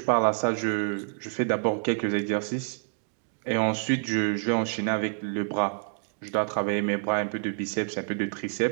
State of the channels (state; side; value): silent; left; digital silence